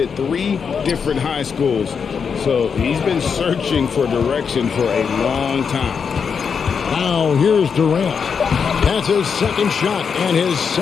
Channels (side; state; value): right; quieter; 6.3 dB